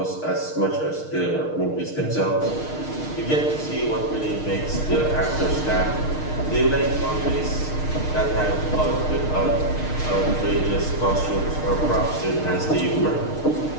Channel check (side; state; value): right; late; 6.5 ms